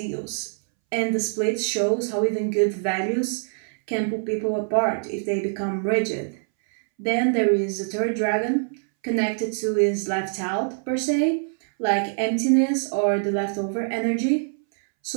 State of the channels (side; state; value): left; silent; 62 dB below the other